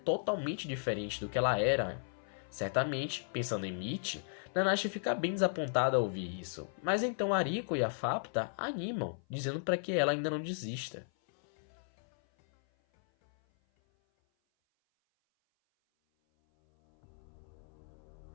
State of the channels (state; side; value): silent; right; 54 dB below the other